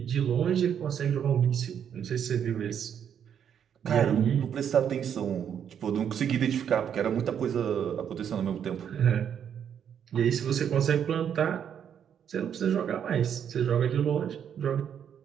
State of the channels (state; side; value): quieter; left; 8.5 dB